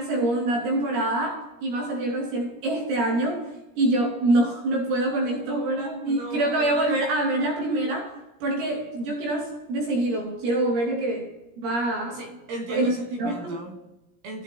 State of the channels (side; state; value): left; late; 17 ms